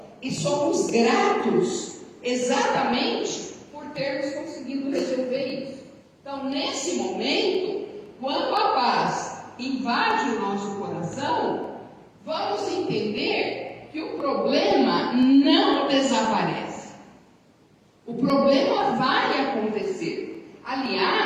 e somos gratos exatamente por termos conseguido resolver isso. Então, nesse momento, quando a paz invade o nosso coração, vamos entender que o problema não desaparece. O problema vai acontecer.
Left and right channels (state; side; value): identical; both; correlation 1.00